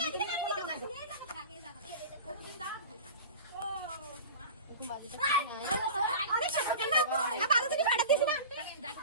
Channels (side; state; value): both; inverted; correlation -0.34